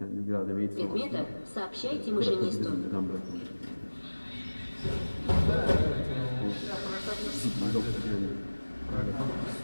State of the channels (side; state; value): both; inverted; correlation -1.00